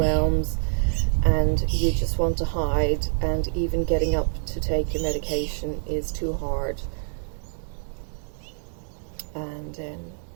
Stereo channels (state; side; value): silent; left; 61 dB below the other